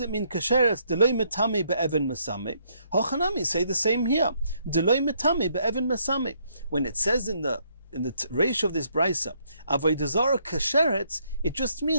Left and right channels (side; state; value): both; inverted; correlation -0.71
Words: mean kasheretz? Deloi metame be'even mesame. Hochanami say the same here. Deloi metame be'even mesame. When it says in the ratio of this brisa, Avodah Zarah kasheretz, it just